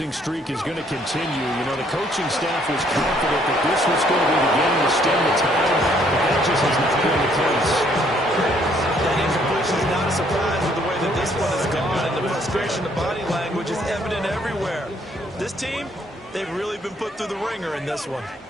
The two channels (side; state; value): both; normal; correlation 0.66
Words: streak is going to continue. You know, the coaching staff was confident that this was going to be the game to stem the tide, but that just has not been the case. frustration, the body language is evident everywhere. This team, they've really been put through the ringer in this one.